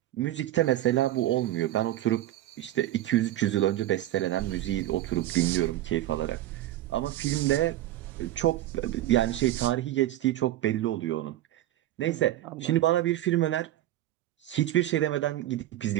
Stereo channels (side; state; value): left; quieter; 14.1 dB